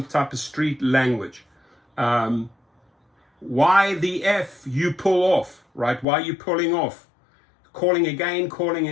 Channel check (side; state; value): right; drops out; at 6.1 s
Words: type of street language. Why the F, you pull off, right? Why are you pulling off? Calling again,